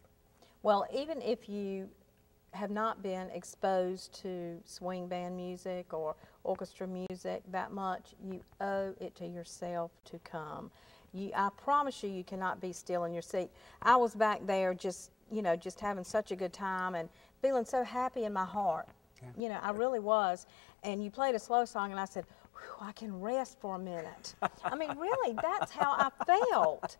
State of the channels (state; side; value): drops out; right; at 19.4 s